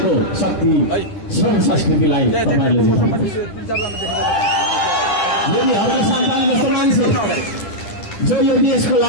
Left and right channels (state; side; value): late; right; 10 ms